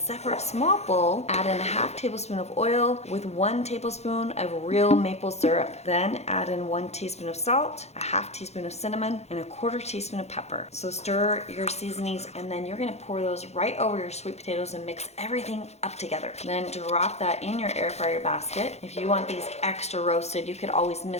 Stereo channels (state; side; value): late; right; 0.31 ms